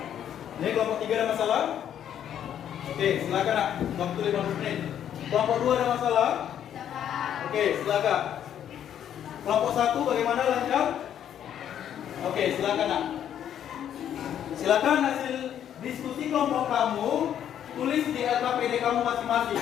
Ini kelompok 3 ada masalah? Oke, silakan nak. Waktu 15 menit. Kelompok 2 ada masalah? Oke, silakan. Kelompok 1 bagaimana, lancar? Oke, silakan nak. Silakan hasil diskusi kelompok kamu tulis di LKPD kamu masing-masing.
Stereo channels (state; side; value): quieter; right; 9.9 dB